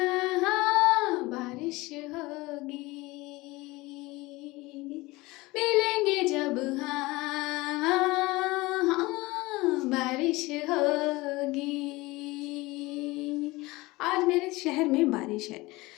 हाँ बारिश होगी, मिलेंगे जब हाँ हाँ हाँ बारिश होगी। आज मेरे शहर में बारिश है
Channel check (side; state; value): right; quieter; 21.4 dB